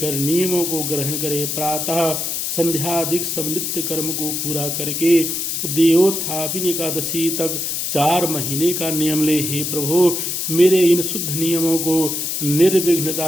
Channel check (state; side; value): noise; left; hiss, 2 dB below the sound